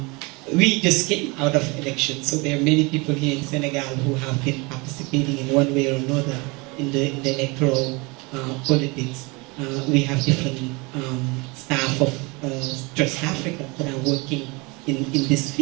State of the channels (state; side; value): quieter; left; 26.8 dB